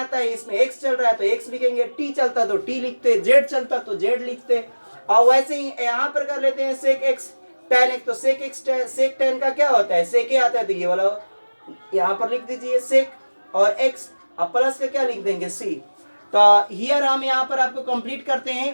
है, इसमें x चल रहा है तो x लिखेंगे, t चलता तो t लिखते, z चलता तो z लिखते। और वैसे ही यहाँ पर कर लेते हैं सेक x tan x, तो सेक x सेक tan का क्या होता है सेक a आता है, तो ये वाला यहाँ पर लिख दीजिए सेक और x अब प्लस का क्या लिख देंगे c। तो हियर हम यहाँ पर आपको कंप्लीट करते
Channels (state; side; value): inverted; both; correlation -1.00